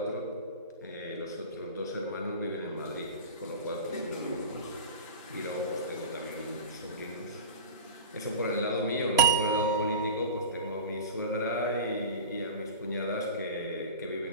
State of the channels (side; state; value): both; inverted; correlation -0.32